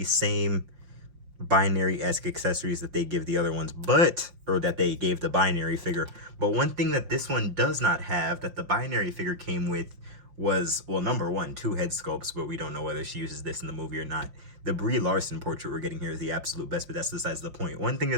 same binary-esque accessories that they give the other ones, or that they gave the binary figure. But one thing that this one does not have that the binary figure came with was, well, number one, two head sculpts, but we don't know whether she uses this in the movie or not. The Brie Larson portrait we're getting here is the absolute best, but that's besides the point. One thing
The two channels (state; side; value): late; left; 5.7 ms